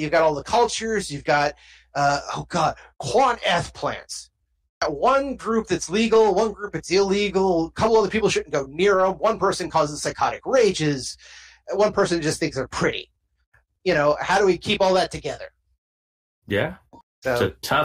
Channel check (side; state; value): both; identical; correlation 1.00